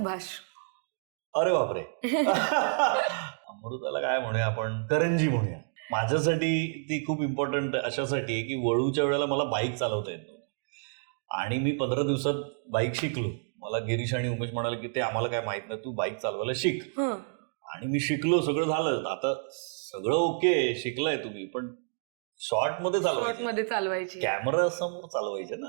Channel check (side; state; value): left; silent; digital silence